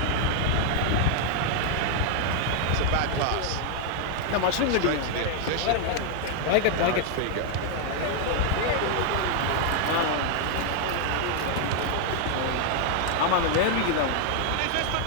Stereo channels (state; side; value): different; both; correlation 0.00